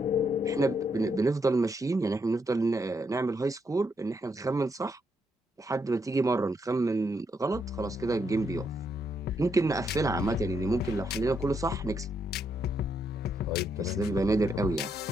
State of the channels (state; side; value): normal; both; correlation 0.77